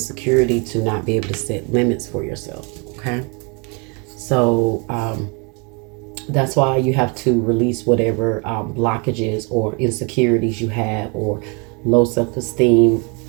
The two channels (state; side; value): quieter; left; 32.9 dB